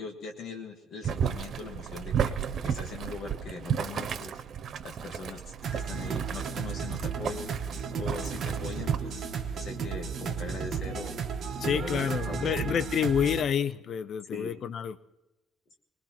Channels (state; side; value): normal; both; correlation 0.60